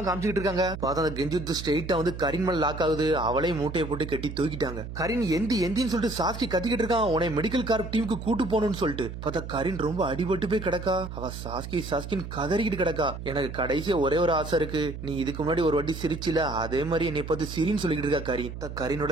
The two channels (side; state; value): right; noise; hum, 9 dB below the sound